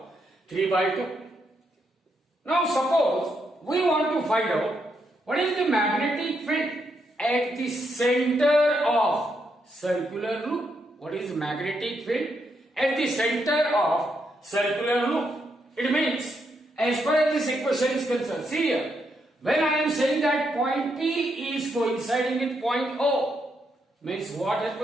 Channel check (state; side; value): normal; both; correlation 0.79